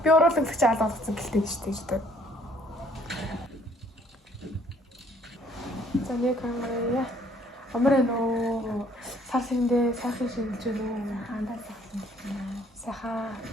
чаал болгоцсон гэлтэй шүү дээ гэдэг. За нэг камера Амраа нөө сарсэндээ сайхан шинжилж байна. Андаа сайхан байна. Сайхан.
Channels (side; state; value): both; normal; correlation 0.62